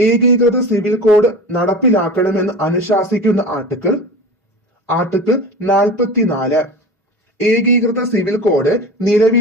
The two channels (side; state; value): both; normal; correlation 0.32